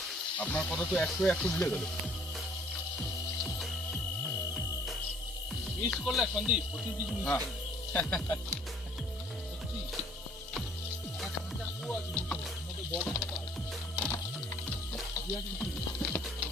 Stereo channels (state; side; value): normal; both; correlation 0.58